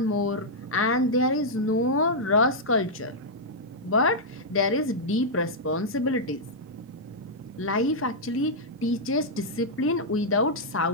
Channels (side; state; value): both; normal; correlation -0.07